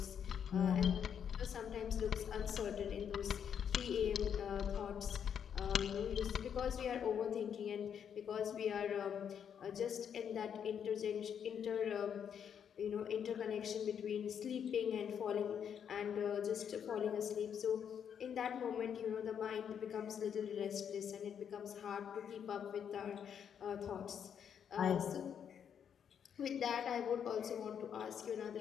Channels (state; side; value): quieter; right; 8.1 dB